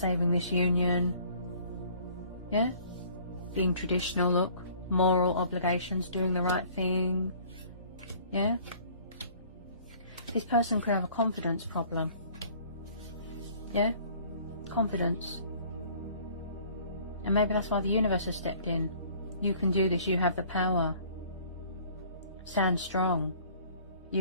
this union. Yeah? Being traditional, look, moral obligations, doing the right thing. Yeah? This person could have a confidence problem. Yeah? Confidence. And maybe that's why the universe has stepped in. You can do this, you have the power. Stand strong.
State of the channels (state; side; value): inverted; both; correlation -0.54